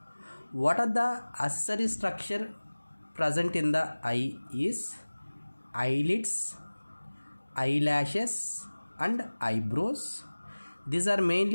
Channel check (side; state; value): both; inverted; correlation -1.00